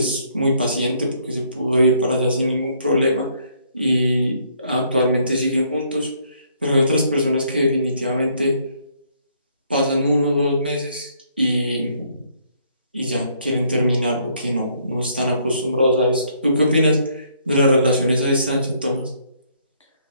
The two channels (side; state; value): both; inverted; correlation -0.67